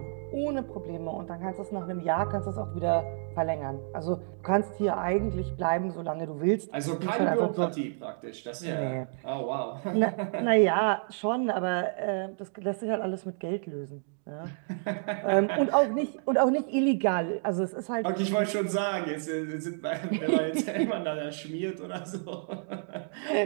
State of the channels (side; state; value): left; silent; digital silence